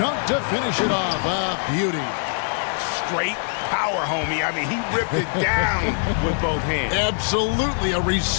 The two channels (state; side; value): silent; right; digital silence